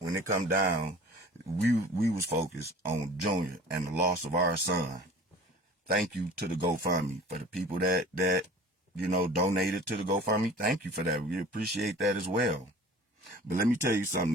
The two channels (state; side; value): normal; both; correlation 0.44